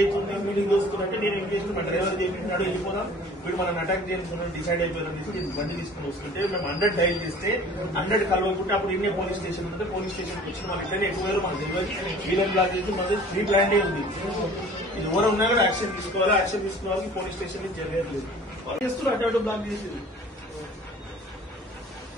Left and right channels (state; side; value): normal; both; correlation 0.47